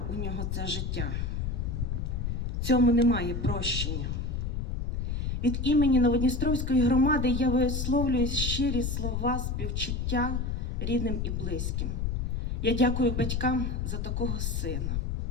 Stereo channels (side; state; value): left; noise; rumble, 1 dB below the sound